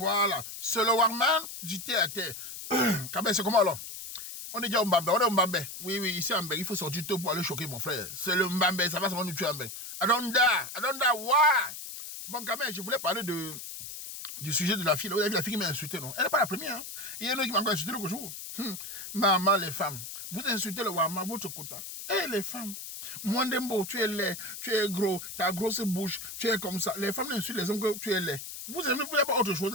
C'est le warman du thé à terre. Quand même, c'est comment alors? On est déjà au Mbambe, on est au Mbambe. Oui, ici à Mbambe, il faut sortir tôt pour aller choquer mon frère. C'est le Mbambe, ça va nous tuer à Mbambe. Adonda, why? Bon, quand même, je voulais parler du sujet de la fille. Vous avez vu la fille qui m'a insulté, non? Elle n'est pas la première. Hein? Il y en a qui m'a encore insulté l'autre jour. Maman, les femmes, vous insultez le Wama, votre quota. Et les femmes, Mwandembo, tu es laid, tu es gros, ta grosse bouche, tu es comme ça. Les femmes insultent les hommes que tu es laid. Vous n'avez pas autre chose,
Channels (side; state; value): left; noise; hiss, 10 dB below the sound